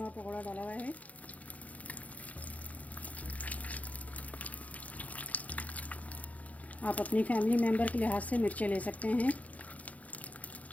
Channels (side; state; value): right; late; 0.070 ms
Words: का पकोड़ा डाला हुआ है। आप अपनी फैमिली मेम्बर के लिहाज से मिर्चें ले सकते हैं।